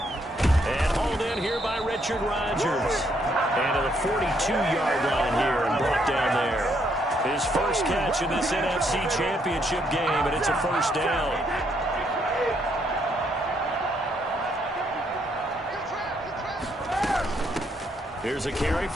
hauled in here by Richard Rodgers. And to the 42-yard line here and brought down there. His first catch in this NFC Championship game, and it's a first down. Here's a carry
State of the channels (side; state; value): both; normal; correlation 0.72